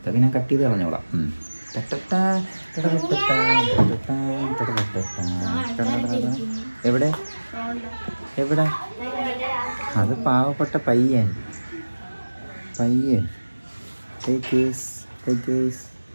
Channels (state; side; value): inverted; both; correlation -1.00